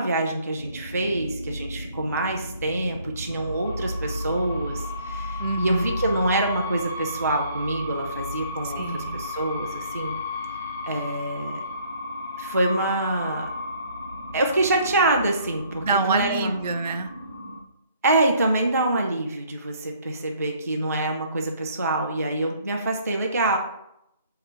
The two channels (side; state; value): both; inverted; correlation -0.62